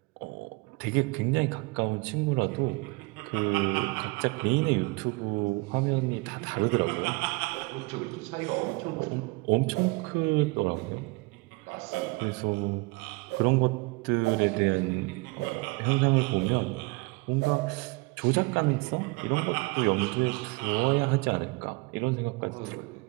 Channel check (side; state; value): left; quieter; 26.7 dB